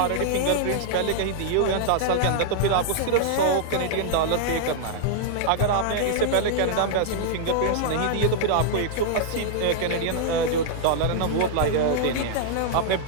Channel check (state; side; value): different; both; correlation -0.01